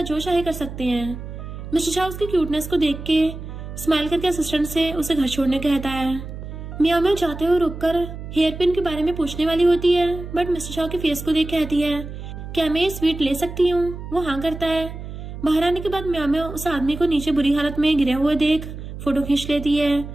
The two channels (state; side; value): noise; right; hum, 10 dB below the sound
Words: जो चाहे कर सकते हैं। मिस्टर चाओ उसकी क्यूटनेस को देख के स्माइल करके असिस्टेंट से उसे घर छोड़ने कहता है। म्यामा जाते हुए रुककर हेयर पिन के बारे में पूछने वाली होती है, बट मिस्टर चाओ के फेस को देख कहती है, क्या मैं ये स्वीट ले सकती हूँ? वो हाँ करता है। बाहर आने के बाद म्यामा उस आदमी को नीचे बुरी हालत में गिरे हुए देख फोटो खींच लेती है।